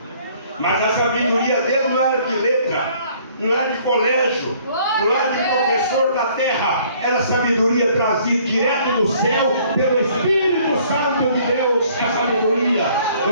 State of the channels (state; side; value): inverted; both; correlation -0.59